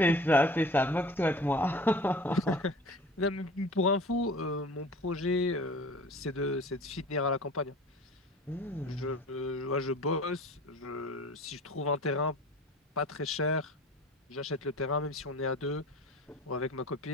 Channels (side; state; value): both; normal; correlation 0.42